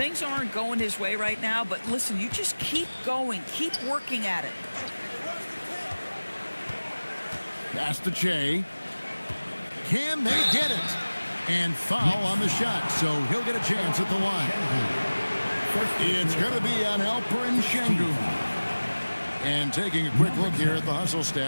aren't going his way right now, but listen, you just keep going. Keep working at it. Pass to Che. Can they get it? And foul on the shot, so he'll get a chance at the line. It's going to be on Alperen Şengün. And taking a quick look here at the hustle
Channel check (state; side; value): inverted; both; correlation -1.00